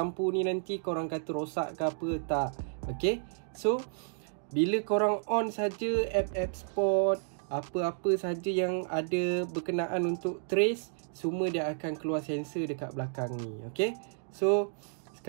ni nanti korang kata rosak ke apa, tak. Okey, so bila korang on saja app-app spot, apa-apa saja yang ada berkenaan untuk trace, semua dia akan keluar sensor dekat belakang ni. Okey, so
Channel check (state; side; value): silent; left; digital silence